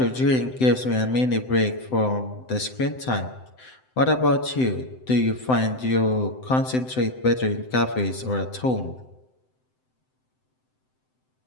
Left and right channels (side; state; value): right; late; 7.8 ms